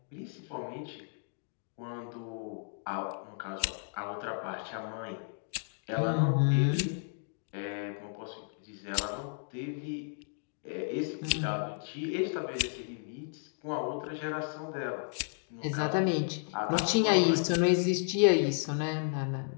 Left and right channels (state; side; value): silent; right; digital silence